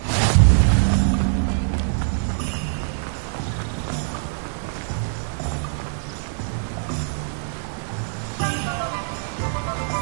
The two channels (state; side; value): silent; left; digital silence